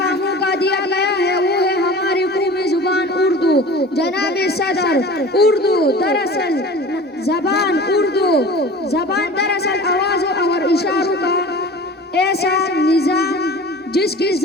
موقع دیا گیا ہے وہ ہے ہماری قومی زبان اردو۔ جناب صدر، اردو دراصل زبان دراصل آوازوں اور اشاروں کا ایسا نظام جس کے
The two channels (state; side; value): normal; both; correlation 0.39